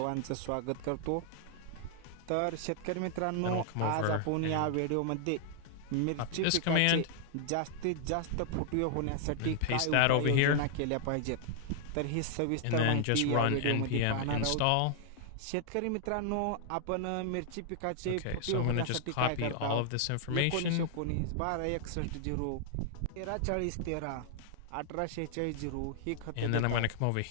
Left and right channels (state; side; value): different; both; correlation 0.00